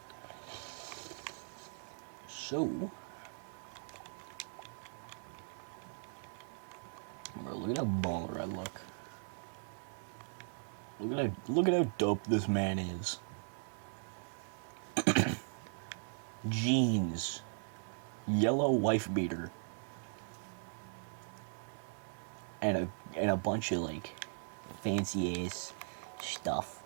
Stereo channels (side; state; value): left; silent; digital silence